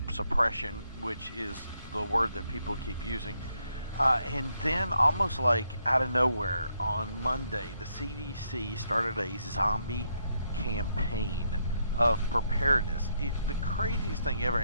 suppression, which is the word that people keep using. And then almost like out of nowhere on Monday, the CDC started a zombie campaign of preparedness. The craziest thing ever.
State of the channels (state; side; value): inverted; both; correlation -0.77